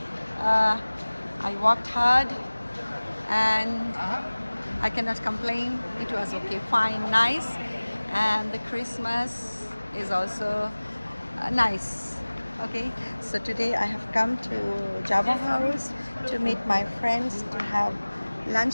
I worked hard and I cannot complain. It was okay, fine, nice. And the Christmas is also nice. Okay, so today I have come to Java House to meet my friends to have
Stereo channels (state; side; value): inverted; both; correlation -1.00